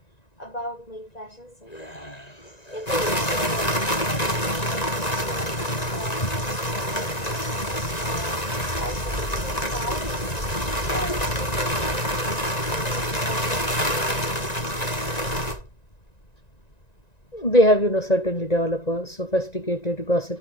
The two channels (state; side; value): late; right; 1.9 ms